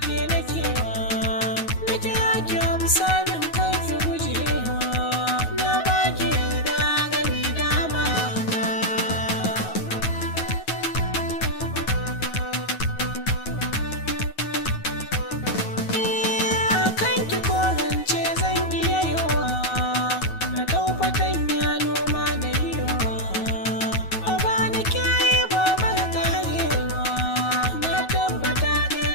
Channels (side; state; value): right; late; 9.3 ms